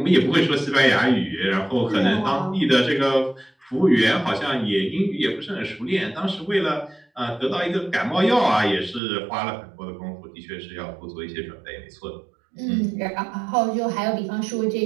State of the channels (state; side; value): drops out; left; at 9.0 s